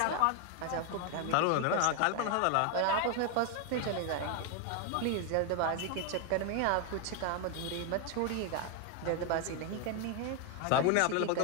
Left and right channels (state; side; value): different; both; correlation 0.01